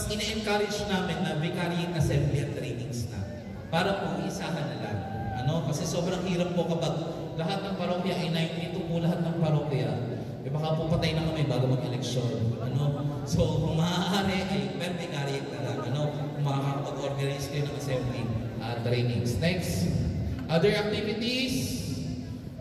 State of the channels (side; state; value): both; identical; correlation 1.00